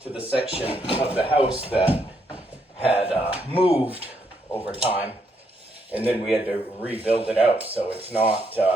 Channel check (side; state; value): both; normal; correlation 0.75